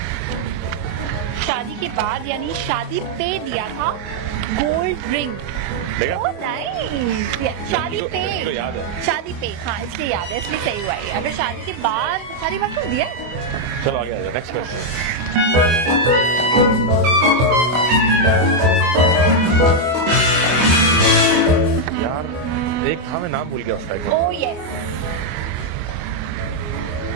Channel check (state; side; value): late; left; 24 ms